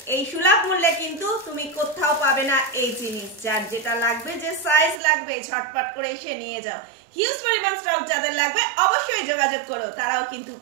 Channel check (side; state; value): left; drops out; at 5.0 s